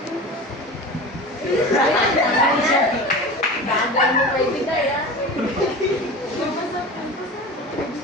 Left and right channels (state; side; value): normal; both; correlation 0.32